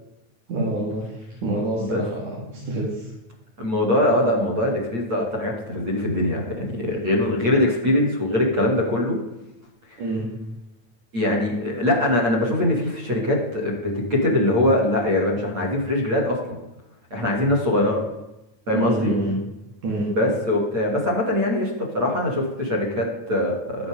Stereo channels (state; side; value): late; left; 9.2 ms